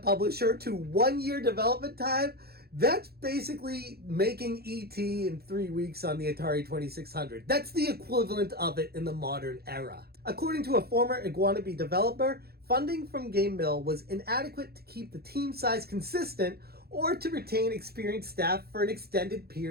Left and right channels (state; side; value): late; left; 0.46 ms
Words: to 1 year development time, that's basically making E.T. in 3 weeks on the Atari 2600. That's the equivalent of it in the modern era. According to a former Iguanabee developer, funding from Game Mill was inadequate to keep the team size consistent or to retain experienced staff for an extended